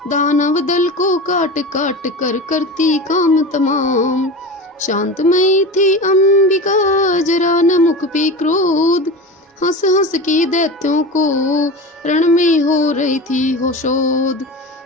दानव दल को काट काट कर करती काम तमाम। शांतमयी थी अंबिका, जरा न मुख पे क्रोध, हंस हंस के दैत्यों को रण में हो रही थी हो शोध।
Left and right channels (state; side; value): normal; both; correlation 0.29